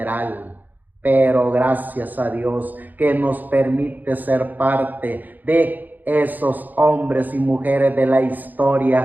Pero gracias a Dios que nos permite ser parte de esos hombres y mujeres de la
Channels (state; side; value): late; left; 0.085 ms